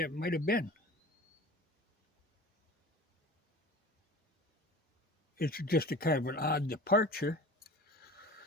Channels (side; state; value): both; normal; correlation 0.39